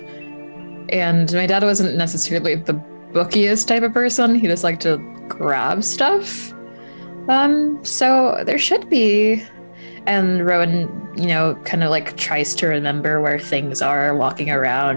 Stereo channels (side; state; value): both; inverted; correlation -1.00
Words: and my dad wasn't necessarily the bookiest type of person. He just liked to grab stuff. So there should be. And Rowan, kind of tries to remember where things are, walking